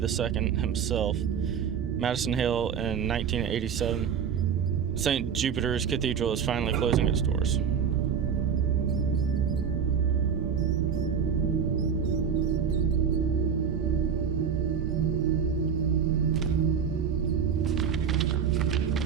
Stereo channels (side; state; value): left; quieter; 7.2 dB